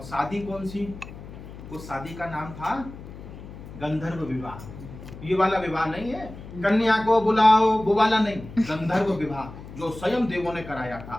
शादी कौन सी? उस शादी का नाम था गंधर्व विवाह। ये वाला विवाह नहीं है, कन्या को बुलाओ वो वाला नहीं, गंधर्व विवाह जो स्वयं देवों ने कराया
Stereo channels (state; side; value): noise; left; hum, 14 dB below the sound